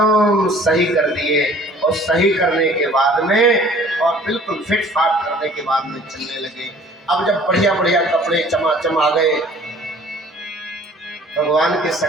सही कर दिए और सही करने के बाद में और बिल्कुल फिट फाट करने के बाद में चलने लगे। अब जब बढ़िया बढ़िया कपड़े चमाचम आ गए, भगवान के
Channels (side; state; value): both; normal; correlation 0.51